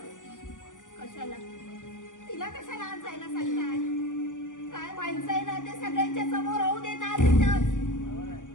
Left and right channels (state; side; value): late; right; 0.87 ms